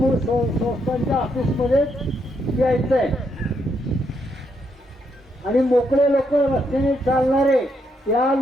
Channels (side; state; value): both; normal; correlation 0.77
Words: संस्थांच्या ऑफिसमध्ये यायचंय. आणि मोकळे लोक रस्त्याने चालणारे या